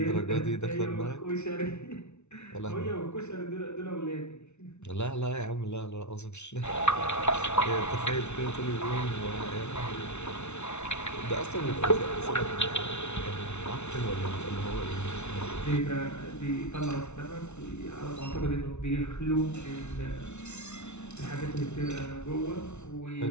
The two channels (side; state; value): right; late; 0.82 ms